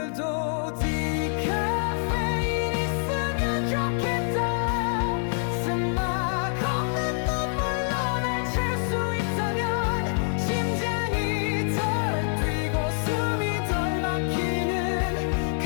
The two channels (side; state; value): right; silent; 61 dB below the other